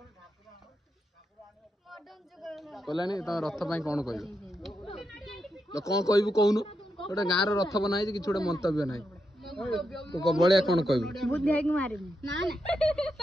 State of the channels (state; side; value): normal; both; correlation 0.84